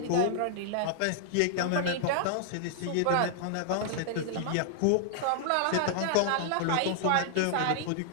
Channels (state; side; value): different; both; correlation -0.01